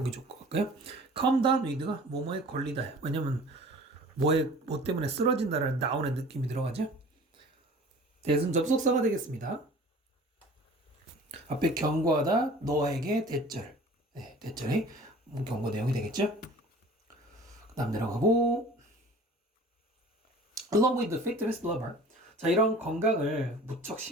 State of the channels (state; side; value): normal; both; correlation 0.45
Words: 좋을 것 같고요. come down with가 뭐뭐에 걸리다. 왜냐면 뭐 때문에 쓰러진다라는 down의 느낌이 들어가죠. 대신 접속사가 되겠습니다. 앞에 경고하다, 너에게 대절. 네, 대절의 경고 내용이 되겠죠. 그 다음 내려가고 along with the fitness lover. 자, 이런 건강을 무척